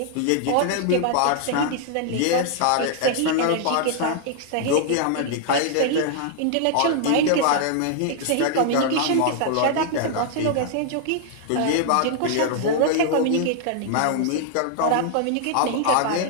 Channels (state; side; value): different; both; correlation -0.01